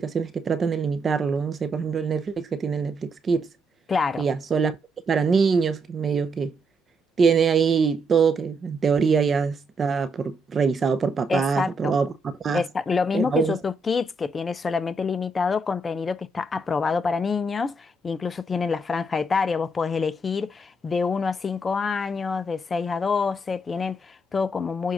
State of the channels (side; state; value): both; normal; correlation 0.77